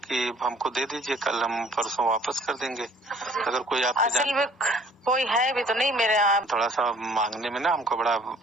हमको दे दीजिए, कल हम परसों वापस कर देंगे। अगर कोई आपके असल में कोई है भी तो नहीं मेरे यहाँ। थोड़ा सा मांगने में ना हमको बड़ा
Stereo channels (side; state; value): both; normal; correlation 0.54